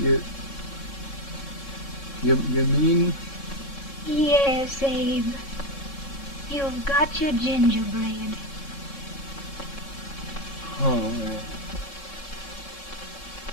You mean? Yes, Abe. You've got your gingerbread. Oh,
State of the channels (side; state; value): right; late; 3.6 ms